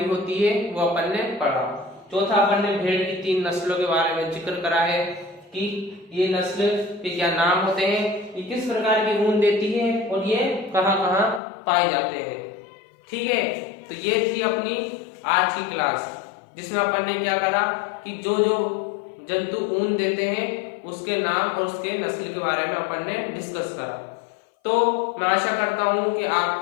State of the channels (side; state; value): right; drops out; at 11.4 s